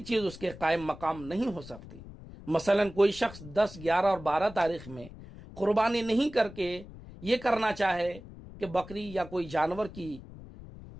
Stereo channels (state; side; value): noise; left; rumble, 16 dB below the sound